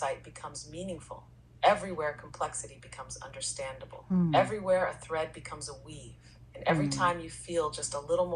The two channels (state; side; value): identical; both; correlation 1.00